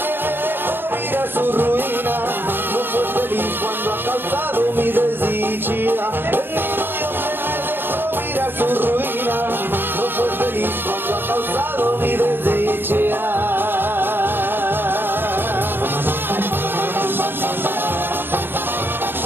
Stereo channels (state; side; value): late; left; 0.10 ms